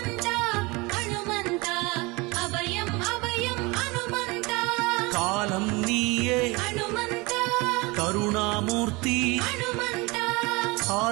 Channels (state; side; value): quieter; left; 25.1 dB